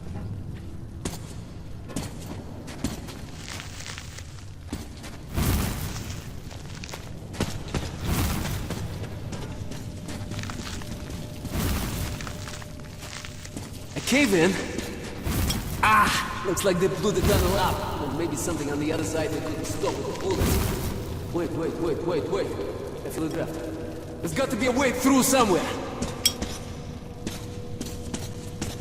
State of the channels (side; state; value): both; identical; correlation 1.00